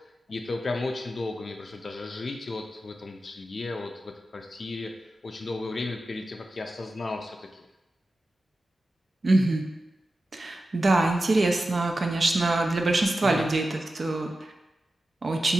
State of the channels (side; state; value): both; normal; correlation 0.93